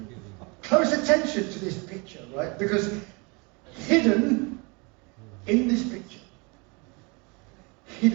Close attention to this picture, right? Because hidden in this picture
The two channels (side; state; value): left; quieter; 29.6 dB